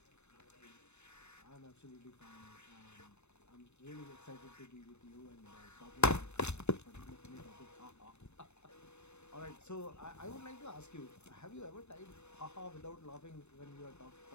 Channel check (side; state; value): right; late; 0.81 ms